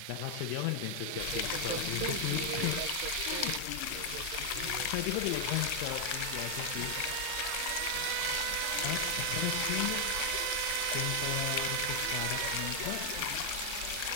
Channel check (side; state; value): both; different; correlation 0.00